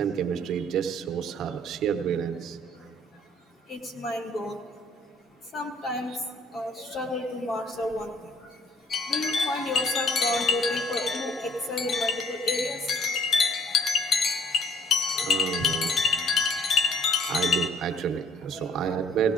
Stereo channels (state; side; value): normal; both; correlation 0.58